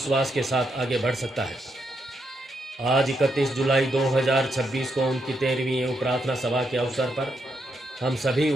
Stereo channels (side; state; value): both; normal; correlation 0.80